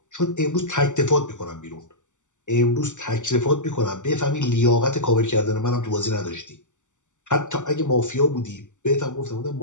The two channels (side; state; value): right; late; 0.85 ms